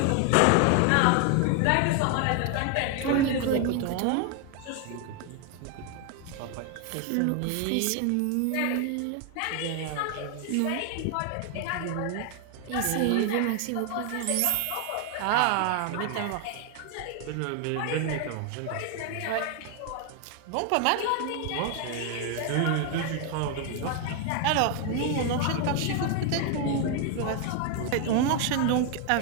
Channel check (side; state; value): both; different; correlation 0.00